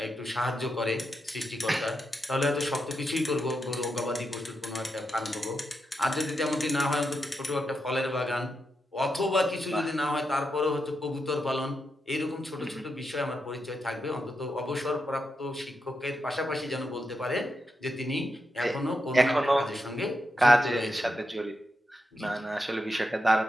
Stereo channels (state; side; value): normal; both; correlation 0.85